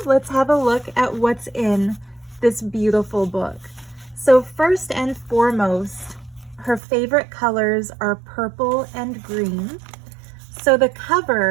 let's have a look at what's in this beautiful book. So first and foremost, her favorite colors are purple and green. So the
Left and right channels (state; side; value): drops out; left; at 6.8 s